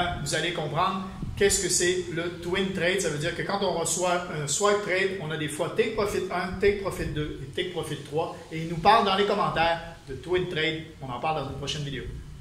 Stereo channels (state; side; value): identical; both; correlation 1.00